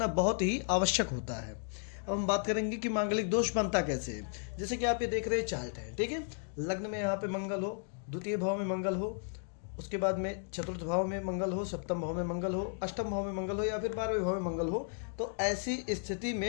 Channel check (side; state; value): right; silent; 55 dB below the other